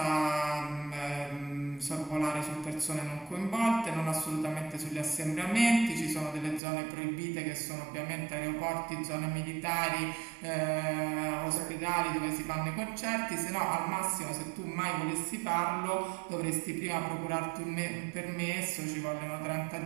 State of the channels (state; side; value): drops out; left; at 6.6 s